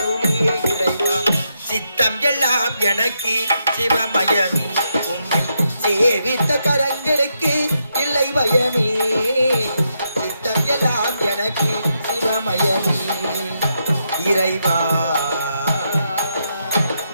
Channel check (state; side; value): inverted; both; correlation -0.81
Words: இறைவா சித்தம் எல்லாம் எனக்கு சிவமயமே உம்மை சேவித்த கரங்களுக்கு இல்லை பயமே சித்தம் எல்லாம் எனக்கு சிவமயமே இறைவா